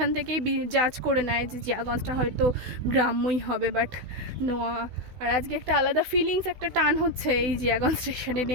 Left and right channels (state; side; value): late; left; 16 ms